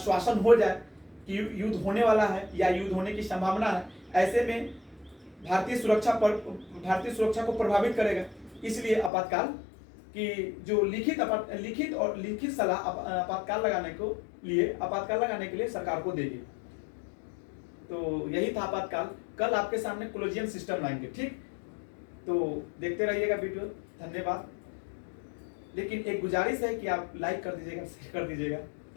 हो जाए कि युद्ध होने वाला है या युद्ध होने की संभावना है, ऐसे में भारतीय सुरक्षा को प्रभावित करेगा। इसलिए आपातकाल की जो लिखित सलाह आपातकाल लगाने के लिए सरकार को देगी। तो यही था आपातकाल। कल आपके सामने कोलोजियम सिस्टम लाएंगे। ठीक, तो देखते रहिएगा वीडियो। धन्यवाद। लेकिन एक गुजारिश है कि आप लाइक कर दीजिएगा, शेयर कर दीजिएगा।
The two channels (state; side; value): drops out; right; at 9.1 s